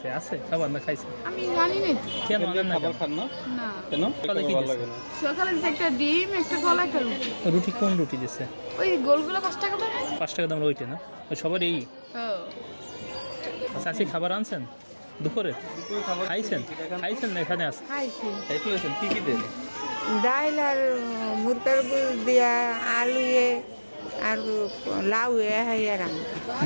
আছে খাবার না খাইছে? আমি জানি না। কেন আনেন না? খাবার খান না না, কেন? সকালে কি দিচ্ছে? সকালে দিছে একটা ডিম, একটা কলা, একটা রুটি। রুটি কোন রুটি দিচ্ছে? ওই গোলগুলো 5 টাকা দাম। 5 টাকা দাম ওইটা না? ওই সবার এই চাষি খাবার আনছেন দুপুরে? খাইছেন না? এখানে আছে খাইছি। কি কি দেন? ডাল আর মুরগার গুল দিয়া, আলু আর লাউ হাইয়া রান।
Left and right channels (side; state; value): both; inverted; correlation -1.00